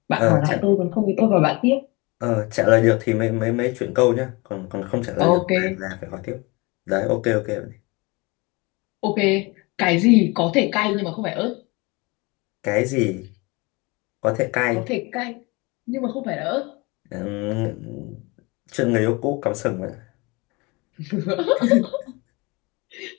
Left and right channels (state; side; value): quieter; right; 25.8 dB